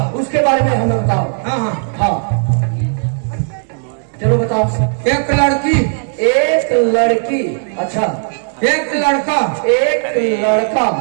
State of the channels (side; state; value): left; silent; digital silence